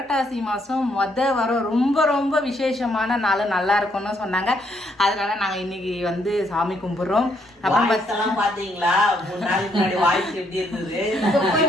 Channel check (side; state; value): both; normal; correlation 0.72